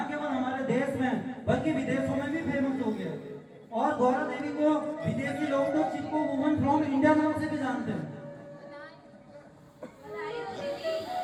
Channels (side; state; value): both; identical; correlation 1.00